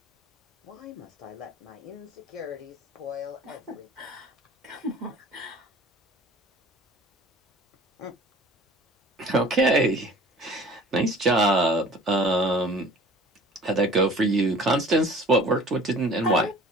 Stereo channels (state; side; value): normal; both; correlation 0.47